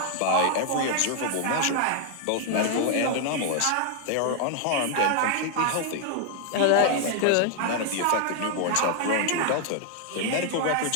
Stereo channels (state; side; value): different; both; correlation 0.00